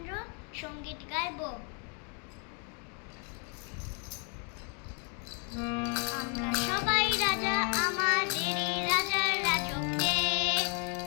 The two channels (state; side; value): quieter; right; 38.3 dB